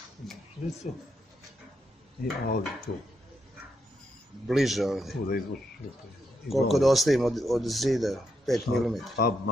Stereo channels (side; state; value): both; normal; correlation 0.81